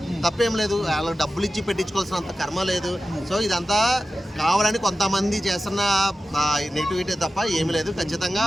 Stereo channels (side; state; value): both; normal; correlation 0.93